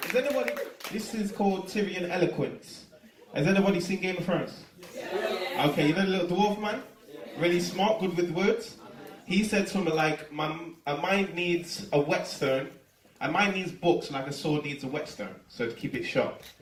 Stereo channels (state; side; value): identical; both; correlation 1.00